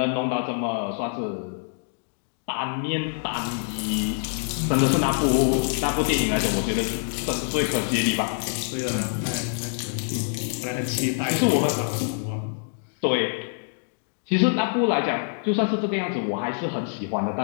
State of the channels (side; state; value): right; silent; digital silence